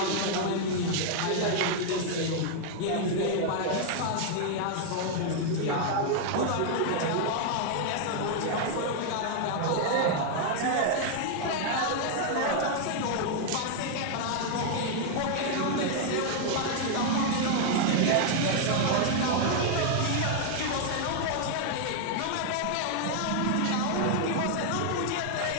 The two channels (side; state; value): both; different; correlation 0.00